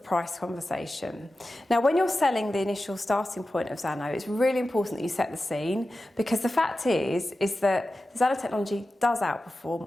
conversation. Now, when you're selling the initial starting point of Zano, it's really important that you set the scene, because the fact is that the Zano technology does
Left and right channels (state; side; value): normal; both; correlation 0.93